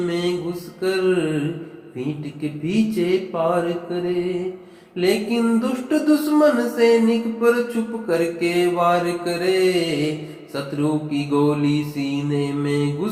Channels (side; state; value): both; identical; correlation 1.00